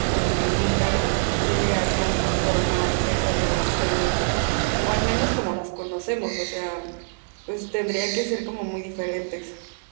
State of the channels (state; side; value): silent; left; digital silence